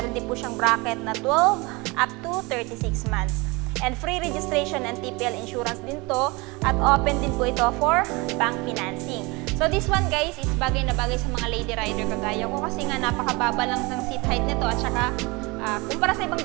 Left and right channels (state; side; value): quieter; left; 25.5 dB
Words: din po siyang bracket na 12 up to 36 months. And free registration and TPL insurance din to. At open din po ito for bank financing. So this one guys is bagay na bagay sa mga lady rider kagaya ko kasi nga napakababa lang ng seat height nito at saka kumpara sa ibang